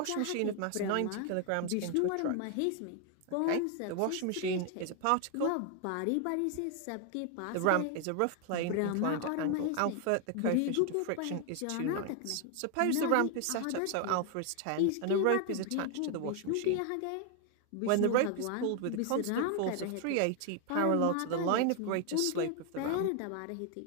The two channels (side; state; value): both; different; correlation 0.01